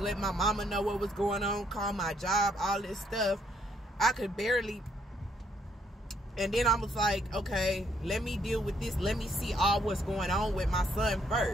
let my mama know what was going on, call my job, all this stuff. I could barely. And then I was like, okay, let me deal with this. Let me see all what's going on with my son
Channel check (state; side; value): normal; both; correlation 0.70